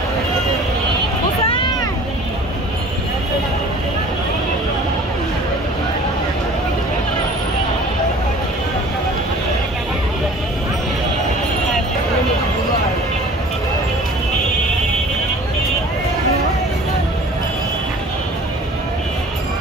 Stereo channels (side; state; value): both; normal; correlation 0.47